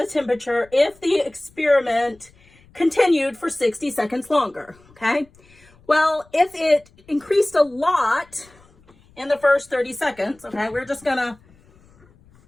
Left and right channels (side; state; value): left; noise; rumble, 29 dB below the sound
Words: temperature if the experiment continued for 60 seconds longer, okay? Well, if it increased a lot in the first 30 seconds, okay, we're just gonna